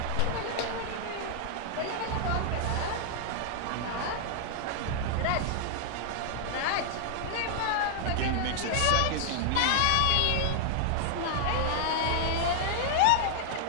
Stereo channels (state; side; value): different; both; correlation -0.01